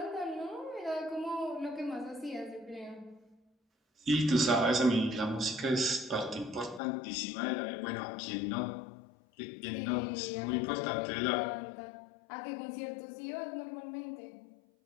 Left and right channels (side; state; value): right; drops out; at 6.8 s